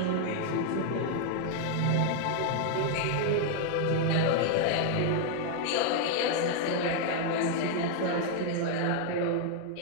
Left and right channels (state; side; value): different; both; correlation 0.00